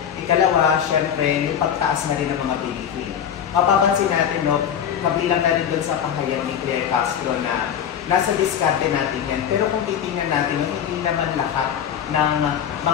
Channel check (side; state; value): right; quieter; 8.8 dB